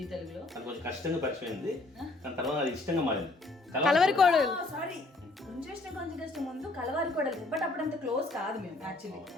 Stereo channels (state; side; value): quieter; right; 3.0 dB